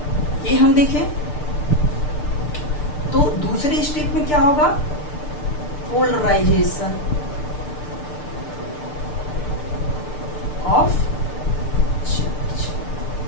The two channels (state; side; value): late; right; 6.7 ms